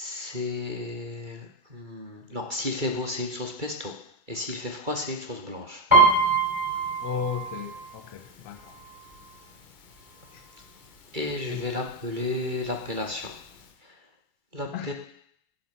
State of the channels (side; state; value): left; late; 2.3 ms